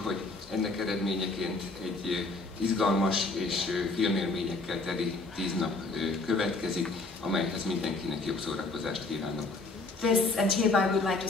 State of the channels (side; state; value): right; quieter; 3.4 dB